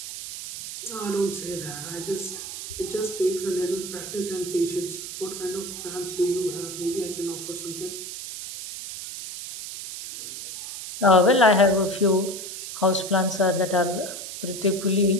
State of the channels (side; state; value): right; noise; hiss, 9 dB below the sound